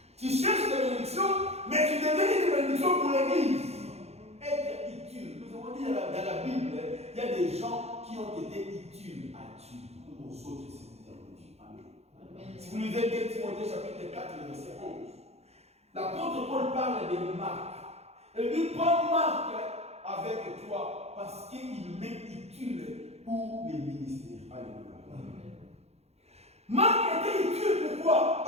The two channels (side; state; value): left; late; 0.31 ms